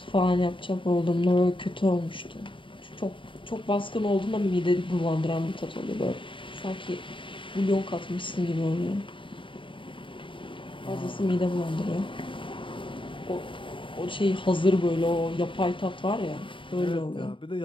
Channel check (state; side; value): late; right; 0.25 ms